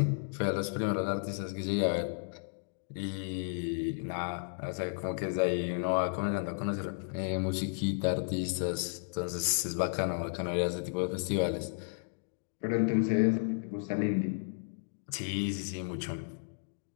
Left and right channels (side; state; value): right; silent; digital silence